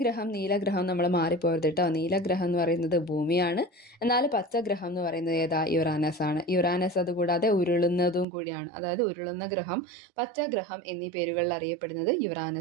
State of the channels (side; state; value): left; drops out; at 8.2 s